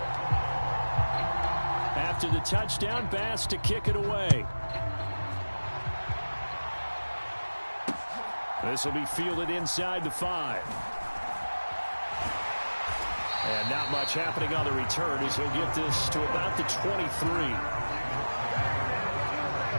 To the touchdown, Bass to kick it away. This will be fielded inside the 5. And not much happening on the return as he'll get this to about the 23.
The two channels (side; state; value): both; inverted; correlation -1.00